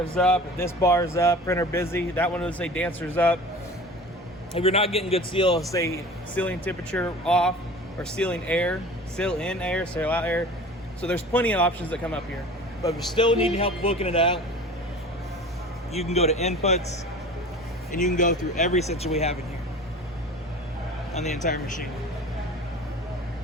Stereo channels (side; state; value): both; normal; correlation 0.39